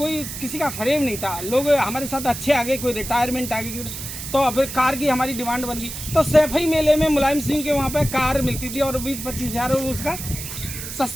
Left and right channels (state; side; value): noise; right; hiss, 8 dB below the sound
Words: किसी का फ्रेम नहीं था, लोग हमारे साथ अच्छे आ गए, कोई रिटायरमेंट आ गई। तो फिर कार की हमारी डिमांड बन गई, तो सैफई मेले में मुलायम सिंह के वहाँ पे कार मिलती थी और 20-25 हज़ार उसका